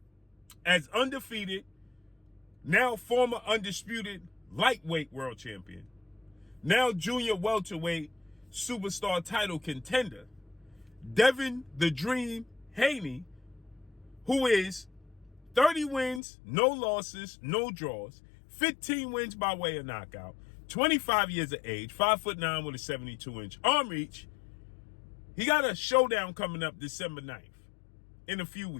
As undefeated, now former undisputed lightweight world champion, now junior welterweight superstar title contender, Devin the Dream Haney, who is 30 wins, no losses, no draws, 15 wins by way of knockout, 25 years of age, 5'9" with a 72-inch arm reach. He got a showdown coming up December 9th in a few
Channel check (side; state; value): right; drops out; at 16.2 s